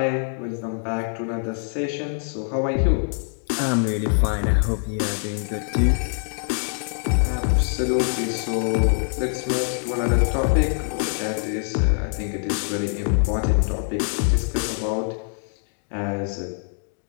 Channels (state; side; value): silent; right; 58 dB below the other